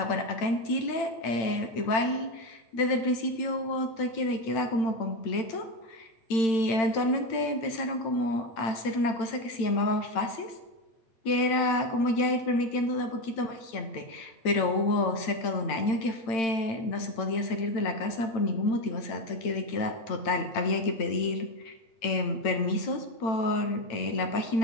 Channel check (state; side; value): late; right; 8.9 ms